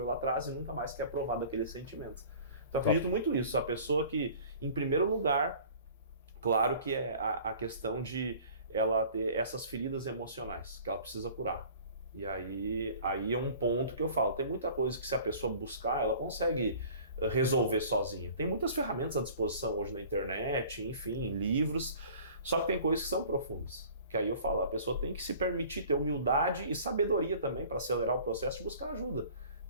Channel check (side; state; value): both; inverted; correlation -0.46